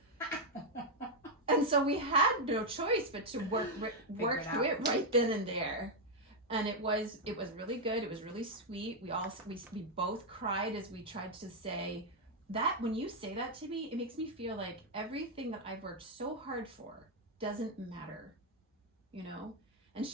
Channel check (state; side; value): normal; both; correlation 0.00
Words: And so we had no choice but to work through it right then and there. And it was really good. It was really sweet. We both cried as we tried to say that. When you say that to me, it makes me feel like everything that I've worked so hard for doesn't matter, you know? And